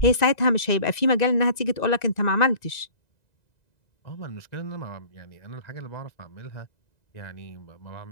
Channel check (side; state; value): right; late; 1.9 ms